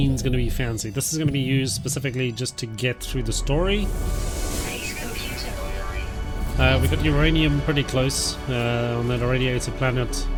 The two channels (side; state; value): both; identical; correlation 1.00